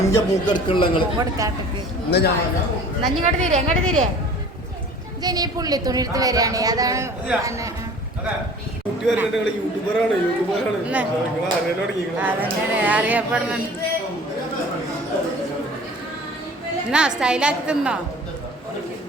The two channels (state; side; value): normal; both; correlation 0.46